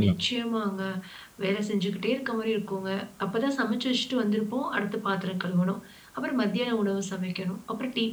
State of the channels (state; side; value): identical; both; correlation 1.00